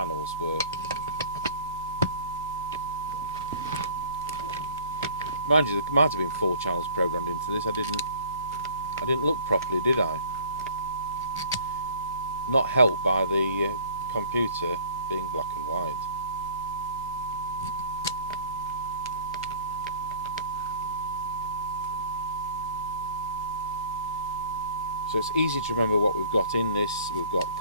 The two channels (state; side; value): inverted; both; correlation -0.50